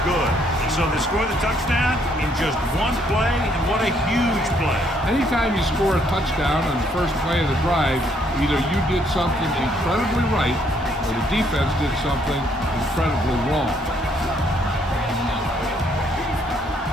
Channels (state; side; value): normal; both; correlation 0.69